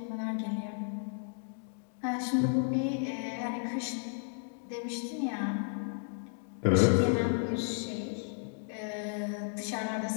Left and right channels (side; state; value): right; silent; 56 dB below the other